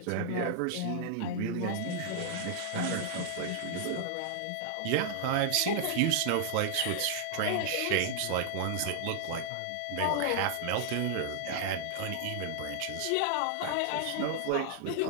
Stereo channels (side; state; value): both; different; correlation -0.01